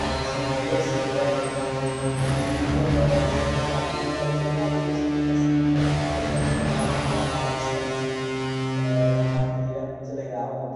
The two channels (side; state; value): both; identical; correlation 1.00